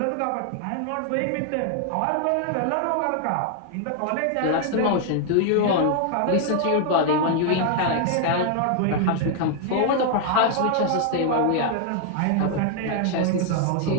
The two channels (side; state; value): both; different; correlation 0.00